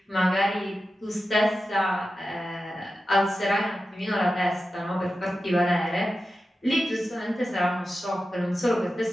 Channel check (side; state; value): both; normal; correlation 0.92